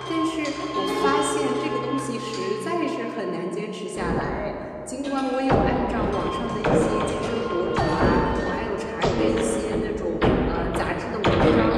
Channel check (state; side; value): identical; both; correlation 1.00